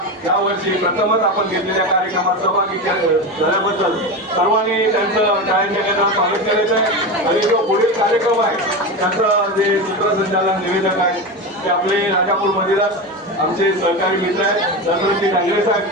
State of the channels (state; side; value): normal; both; correlation 0.21